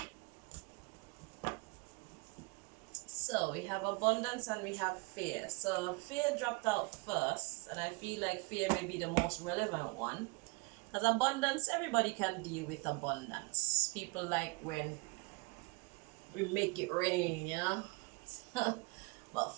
So we have abundance and we have fear. So fear dropped out first, and I feel like fear may be the most relevant one. Because abundance, everybody can deal with abundance. People like when we make it rain, you know. But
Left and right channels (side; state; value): left; quieter; 29.1 dB